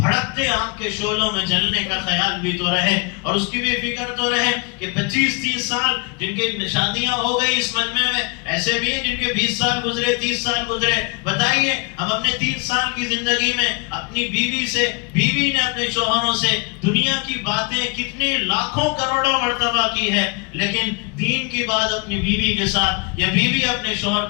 آگ کے شعلوں میں جلنے کا خیال بھی تو رہے، اور اس کی بھی فکر تو رہے کہ 25-30 سال جن کے شادیاں ہو گئی اس مجمع میں، ایسے بھی ہیں جن کے 20 سال گزرے، 30 سال گزرے۔ بتائیے ہم اپنے 30 سال کی زندگی میں اپنی بیوی نے اپنے شوہروں سے دنیا کی باتیں کتنے لاکھوں کروڑوں مرتبہ کی ہے، لیکن دین کی بات اپنی بیوی کے ساتھ یا بیوی اپنے شوہر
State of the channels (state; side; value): quieter; right; 31.7 dB